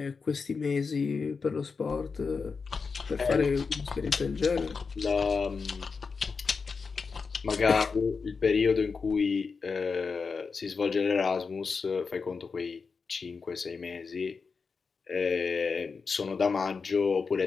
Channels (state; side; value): quieter; right; 5.0 dB